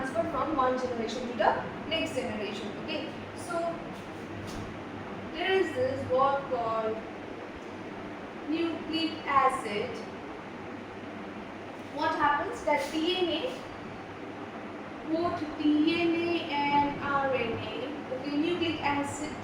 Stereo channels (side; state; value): both; identical; correlation 1.00